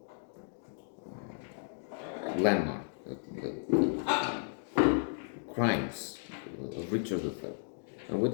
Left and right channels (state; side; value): silent; right; digital silence